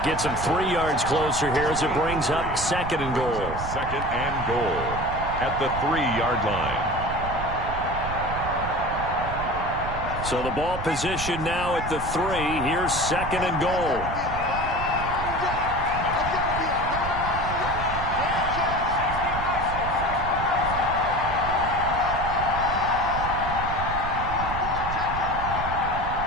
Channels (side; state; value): right; noise; rumble, 7 dB below the sound